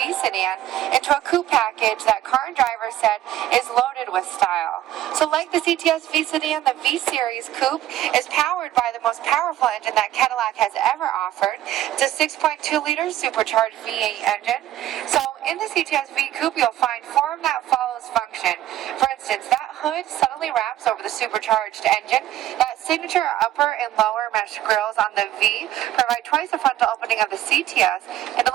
sedan into a coupe package that car and driver said is loaded with style. So like the CTS-V sedan, the V Series Coupe is powered by the most powerful engine that Cadillac has ever offered. It's a 6.2-liter supercharged V8 engine. So in the CTS-V Coupe, you'll find form that follows function. For instance, that hood subtly wraps over the supercharged engine. That signature upper and lower mesh grills on the V provide twice the frontal opening of the CTS and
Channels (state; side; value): quieter; left; 13.2 dB